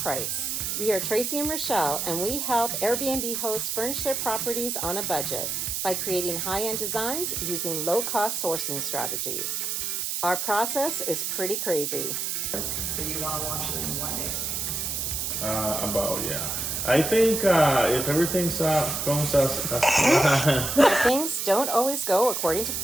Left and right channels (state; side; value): noise; right; hiss, 2 dB below the sound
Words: We are Tracy and Rochelle, and we help Airbnb hosts furnish their properties on a budget by creating high-end designs using low-cost sourcing strategies. Our process is pretty crazy. So you want to launch it in one day? Yeah. I think if everything's goes as Things don't always go according to